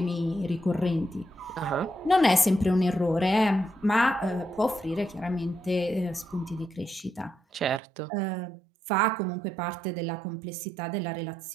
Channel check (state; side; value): drops out; left; at 7.8 s